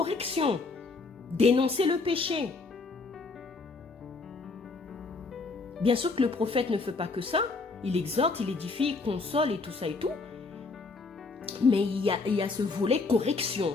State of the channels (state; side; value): quieter; right; 3.9 dB